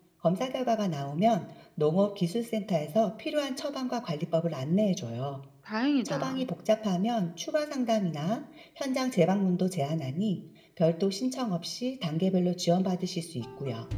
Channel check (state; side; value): identical; both; correlation 1.00